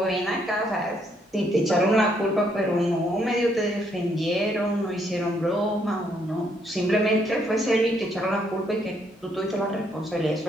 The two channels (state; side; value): normal; both; correlation 0.72